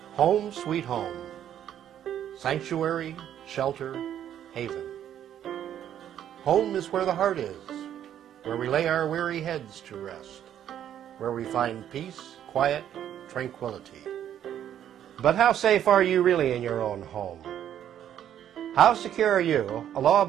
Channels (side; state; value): left; quieter; 10.4 dB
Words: Home sweet home, sanctuary, shelter, haven. Home is where the heart is, where we lay our weary heads to rest, where we find peace, quiet, tranquility. But how safe are you really in your own home? How secure are you, a